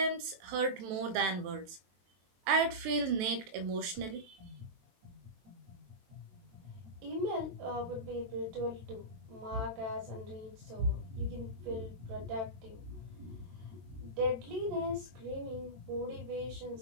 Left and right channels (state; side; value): late; left; 23 ms